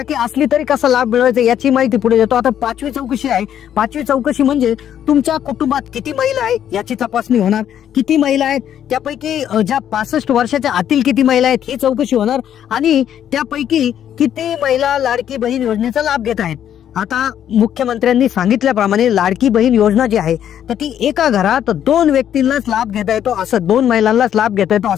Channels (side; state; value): right; quieter; 10.0 dB